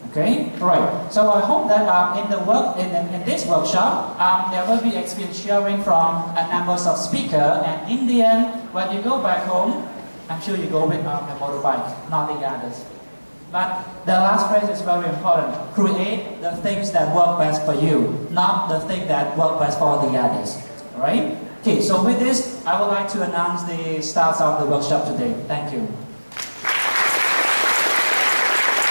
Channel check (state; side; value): inverted; both; correlation -1.00